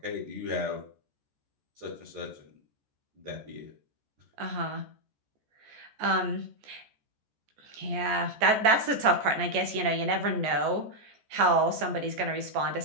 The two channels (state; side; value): late; left; 14 ms